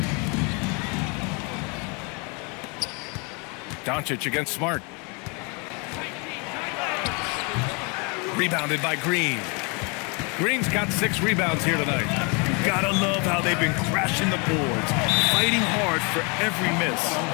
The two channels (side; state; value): right; quieter; 32.3 dB